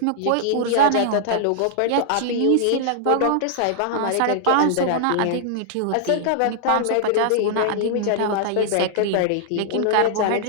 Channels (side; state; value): both; different; correlation -0.01